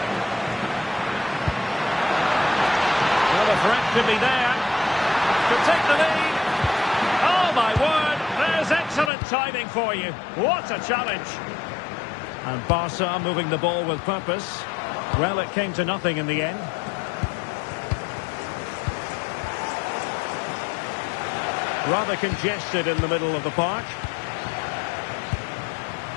Well, the threat could be there. Could take the lead. Oh, my word. There's excellent timing for you. What a challenge. And Barca moving the ball with purpose. Well, it came to nothing in the end. Rather congested in the middle of the park.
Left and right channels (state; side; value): drops out; right; at 9.1 s